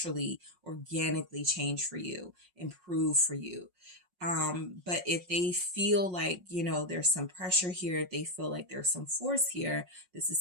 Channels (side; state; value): left; late; 5.5 ms